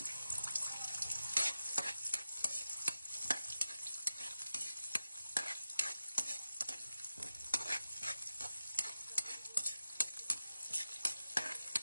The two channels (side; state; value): both; inverted; correlation -0.93